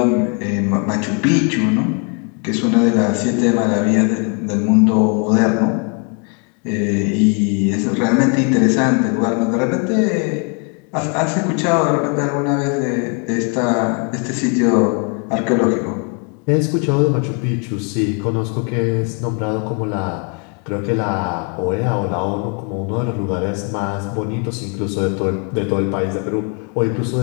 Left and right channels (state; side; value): quieter; right; 35.9 dB